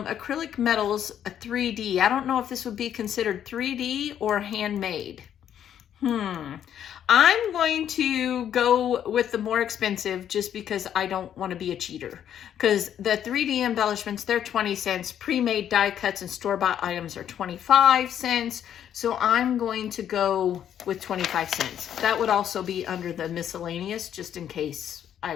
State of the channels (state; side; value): quieter; right; 9.8 dB